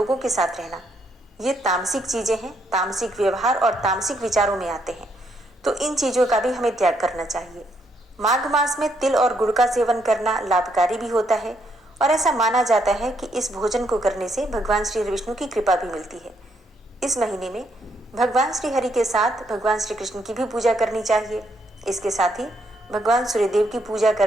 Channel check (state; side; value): normal; both; correlation 0.74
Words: के साथ रहना, ये तामसिक चीज़ें हैं, तामसिक व्यवहार और तामसिक विचारों में आते हैं। तो इन चीज़ों का भी हमें त्याग करना चाहिए। माघ मास में तिल और गुड़ का सेवन करना लाभकारी भी होता है और ऐसा माना जाता है कि इस भोजन को करने से भगवान श्री विष्णु की कृपा भी मिलती है। इस महीने में भगवान श्री हरि के साथ भगवान श्री कृष्ण की भी पूजा करनी चाहिए। इसके साथ ही भगवान सूर्यदेव की पूजा